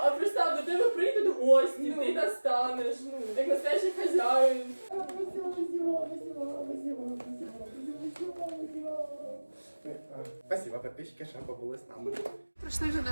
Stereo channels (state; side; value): inverted; both; correlation -1.00